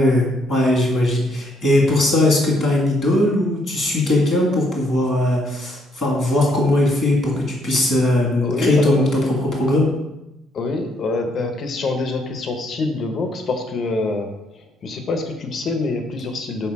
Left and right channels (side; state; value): both; normal; correlation 0.71